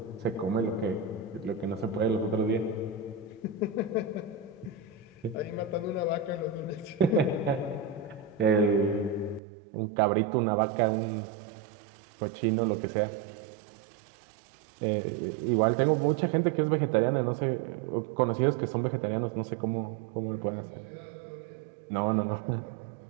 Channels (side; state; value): left; drops out; at 9.4 s